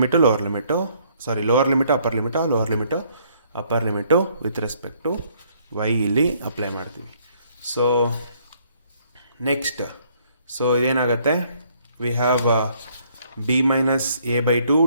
lower limit, lower limit upper limit, lower limit upper limit with respect to Y ಇಲ್ಲಿ apply ಮಾಡ್ತೀವಿ. So next, so ಇದೇನಾಗುತ್ತೆ, we have b minus a by 2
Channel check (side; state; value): both; inverted; correlation -0.66